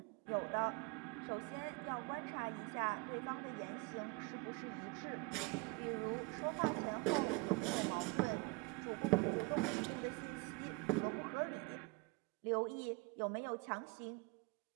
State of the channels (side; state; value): left; quieter; 25.7 dB